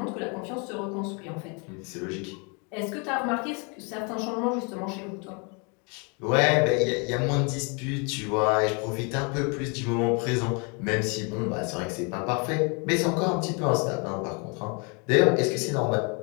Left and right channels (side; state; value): right; quieter; 34.0 dB